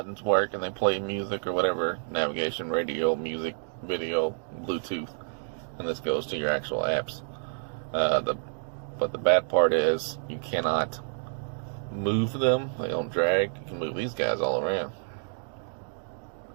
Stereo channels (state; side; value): silent; left; 59 dB below the other